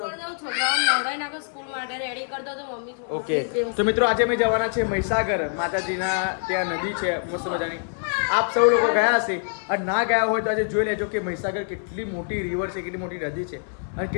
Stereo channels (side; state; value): right; silent; digital silence